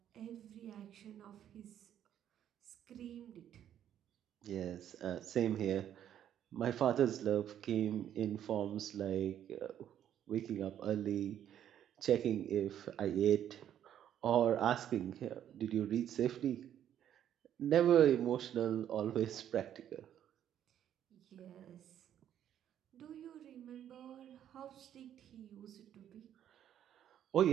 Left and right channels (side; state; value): left; quieter; 10.4 dB